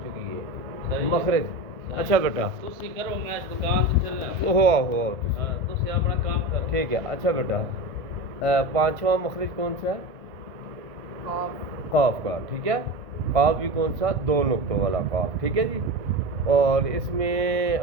چکی ہے. مخرج اچھا بیٹا تسی کرو میں دکان تے چلیا ہو ہاں تسی اپنا کام کرو. ٹھیک ہے. اچھا بیٹا پانچواں مخرج کون سا ہے؟ قاف کا. ٹھیک ہے. قاف بھی کون سا؟ 2 نقطوں والا قاف. ٹھیک ہے جی. اور اس میں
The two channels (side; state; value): left; late; 1.6 ms